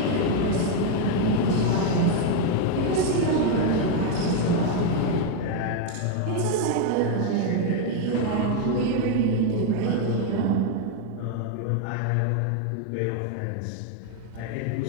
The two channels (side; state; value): both; different; correlation 0.01